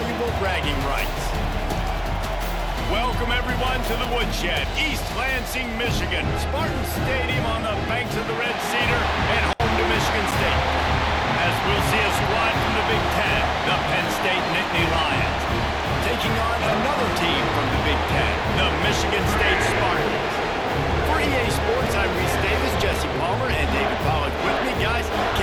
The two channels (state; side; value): identical; both; correlation 1.00